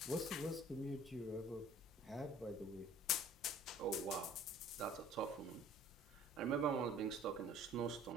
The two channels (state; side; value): normal; both; correlation 0.51